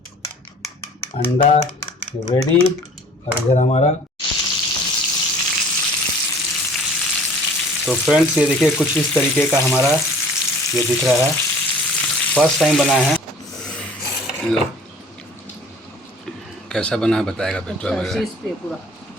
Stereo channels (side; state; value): both; normal; correlation 0.50